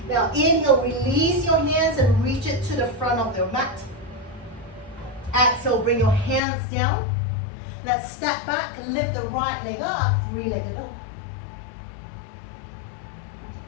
Now inhale, release your hands and reach it to the front of your mat. Exhale, bring your hands down. Let's step back and lift the right leg up, three-legged dog.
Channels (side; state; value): right; drops out; at 6.4 s